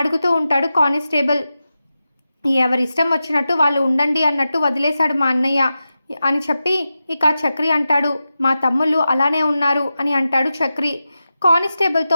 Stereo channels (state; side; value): inverted; both; correlation -0.92